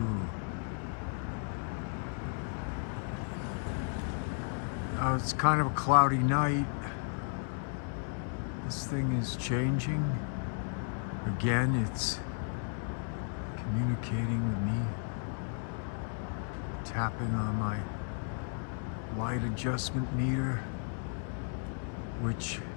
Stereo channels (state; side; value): silent; right; 55 dB below the other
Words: It's kind of a cloudy night. This thing is changing. Again, it's communicating with me. Tapping on my light adjustment meter, which